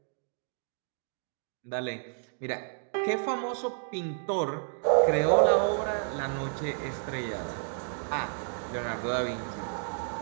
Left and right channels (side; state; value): left; silent; digital silence